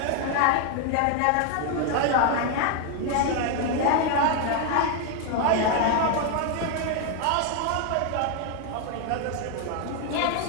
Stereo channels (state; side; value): different; both; correlation 0.01